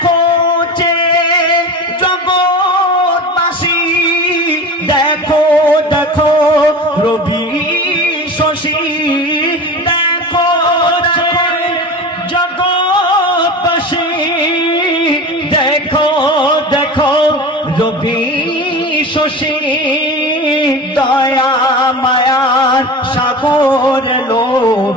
যে জগৎবাসী, দেখো দেখো রবি শশী, দেখো দেখো জগৎবাসী, দেখো দেখো রবি শশী, দয়া মায়ার সাগর লো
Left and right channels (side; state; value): both; normal; correlation 0.32